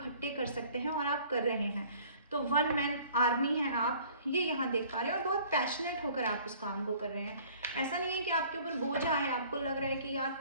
कर सकते हैं और आप कर रहे हैं। तो 1 मैन आर्मी है आप, ये यहाँ देख पा रहे हैं, और बहुत पैशनेट होकर आप उस काम को कर रहे हैं। ऐसा नहीं है कि आपके ऊपर बोझ है, आपको लग रहा है कि यार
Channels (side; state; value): both; inverted; correlation -0.52